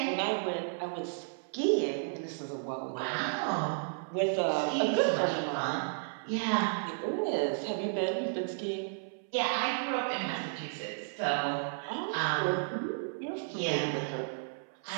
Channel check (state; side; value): silent; left; 56 dB below the other